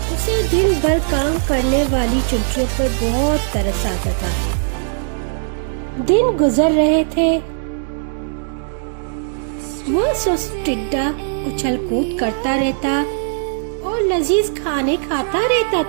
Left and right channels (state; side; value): silent; left; 67 dB below the other